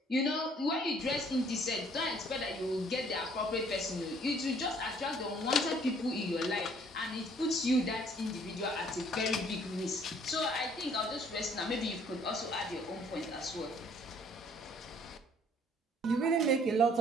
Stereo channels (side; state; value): both; normal; correlation 0.60